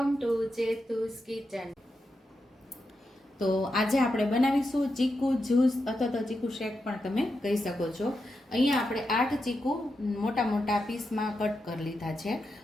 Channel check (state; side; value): normal; both; correlation 0.87